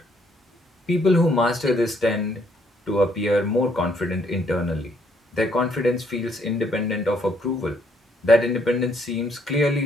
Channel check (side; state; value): both; normal; correlation 0.69